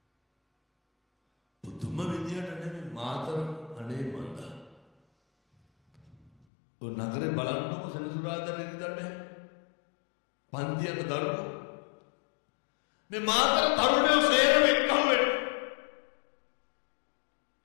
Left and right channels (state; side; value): drops out; right; at 6.3 s